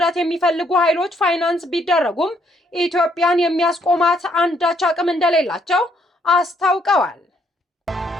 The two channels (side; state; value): both; normal; correlation 0.70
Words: የሚፈልጉ ኃይሎች ፋይናንስ ቢደረጉም ኢትዮጵያን የሚያስቆማት አንዳች አቅም እንደሌላቸው አስታውቀዋል።